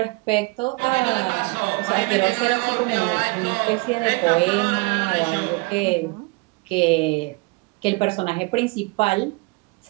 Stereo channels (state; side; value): quieter; left; 27.3 dB